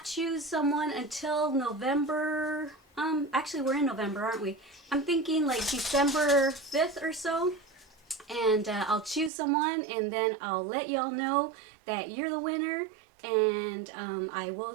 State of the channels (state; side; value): drops out; left; at 9.3 s